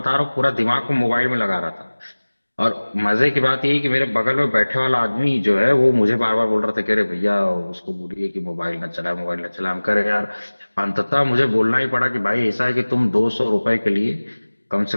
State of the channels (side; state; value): both; inverted; correlation -1.00